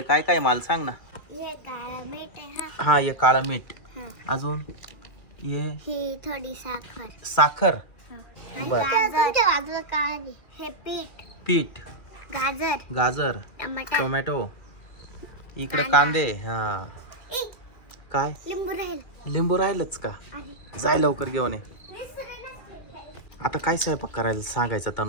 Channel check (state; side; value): late; right; 2.4 ms